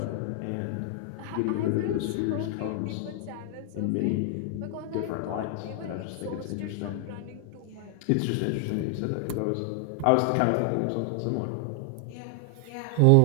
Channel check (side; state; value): both; different; correlation 0.00